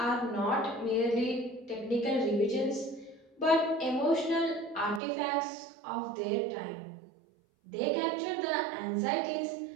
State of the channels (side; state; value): left; drops out; at 5.0 s